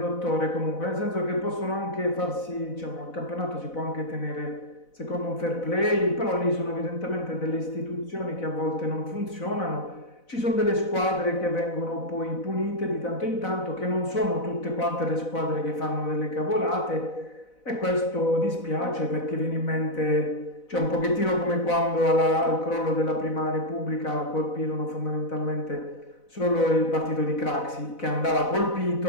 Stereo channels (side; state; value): right; late; 4.0 ms